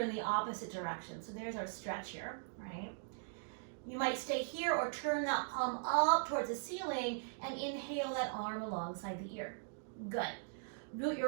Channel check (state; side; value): silent; left; digital silence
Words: the opposite direction. So there's our stretch here, right? You might stay here or turn that palm up towards the ceiling and inhale that arm alongside the ear. Good. Root